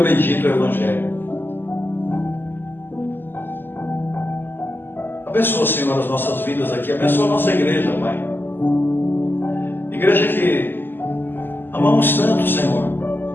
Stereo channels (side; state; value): right; late; 0.095 ms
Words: bendito Evangelho. Abençoa, Senhor, as nossas vidas aqui, abençoa a nossa igreja, Pai, igreja que amamos tanto, Senhor,